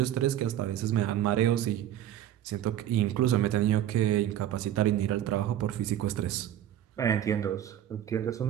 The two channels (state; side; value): quieter; left; 11.5 dB